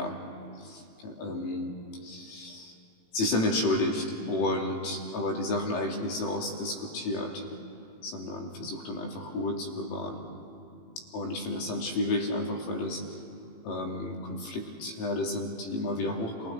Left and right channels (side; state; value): right; late; 18 ms